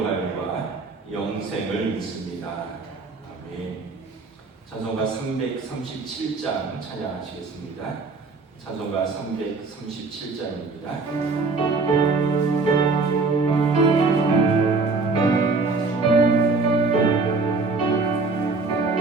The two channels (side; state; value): left; quieter; 4.0 dB